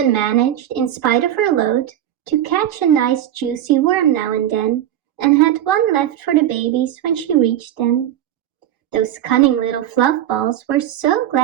managed, in spite of her load, to catch a nice juicy worm now and then, and had one left for the babies when she reached them. Those cunning little fluff balls were so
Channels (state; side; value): quieter; left; 11.6 dB